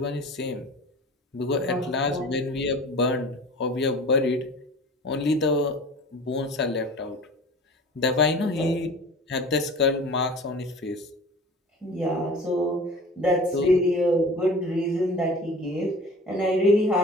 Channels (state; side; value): normal; both; correlation 0.40